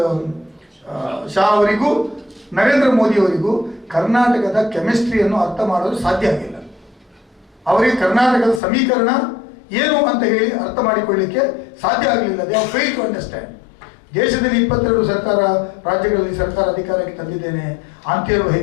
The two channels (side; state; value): right; drops out; at 8.6 s